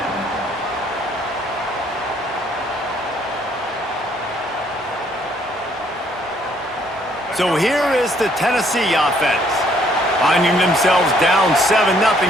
So here is the Tennessee offense. Finding themselves down 7-0,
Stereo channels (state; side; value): normal; both; correlation 0.65